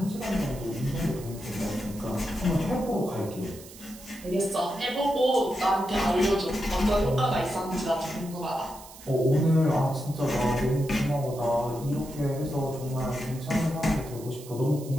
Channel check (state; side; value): noise; right; hiss, 18 dB below the sound